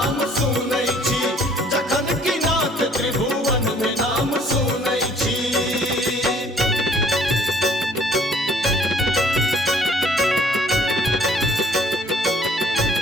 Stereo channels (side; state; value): both; normal; correlation 0.58